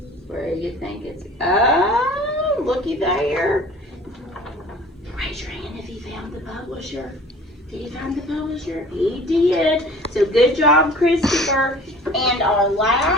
Where do you think it's? Oh, looky there. Raise your hand if he found the publisher. Did he find the publisher? He did. So good job, Christopher. And our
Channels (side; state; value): both; normal; correlation 0.46